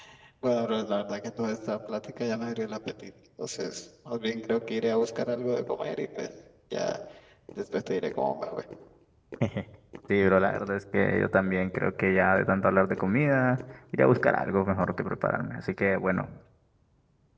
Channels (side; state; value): both; identical; correlation 1.00